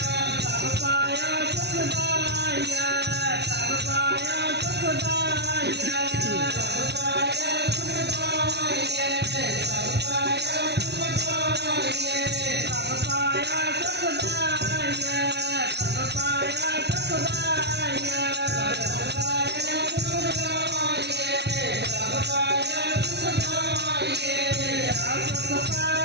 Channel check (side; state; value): left; late; 0.49 ms